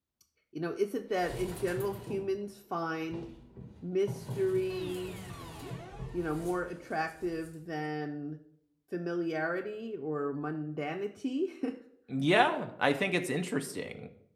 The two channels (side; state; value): both; identical; correlation 1.00